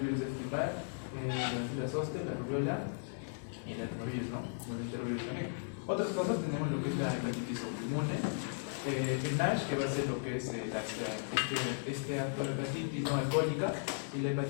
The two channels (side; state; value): right; silent; 54 dB below the other